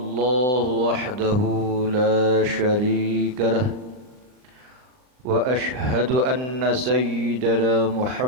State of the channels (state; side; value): late; left; 39 ms